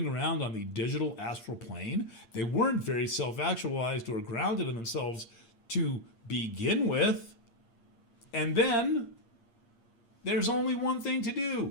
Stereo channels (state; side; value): late; right; 8.6 ms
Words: around on the digital astral plane. They weren't very self-actualized or grounded in themselves to begin with. And then there's only one thing to